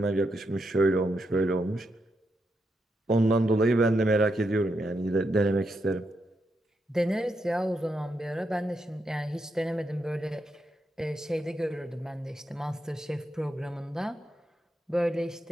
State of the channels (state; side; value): normal; both; correlation 0.82